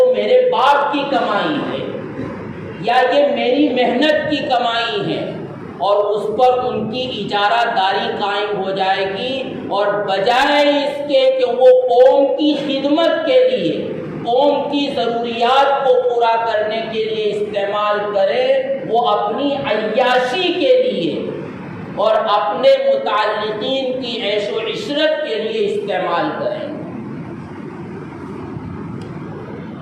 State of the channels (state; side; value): identical; both; correlation 1.00